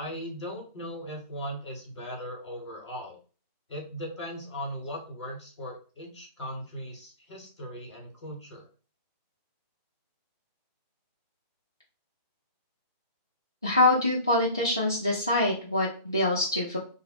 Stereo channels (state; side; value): inverted; both; correlation -0.41